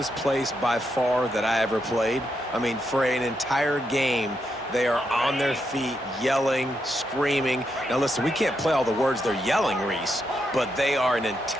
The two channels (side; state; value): both; normal; correlation 0.82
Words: place by far that I ever played. I mean, for an entire game, they are on their feet, yelling, screaming. Now, listen, we can't play all the words they're yelling, Reese, but they are an